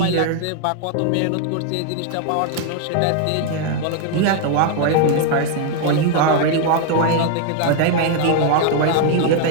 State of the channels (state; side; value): different; both; correlation 0.00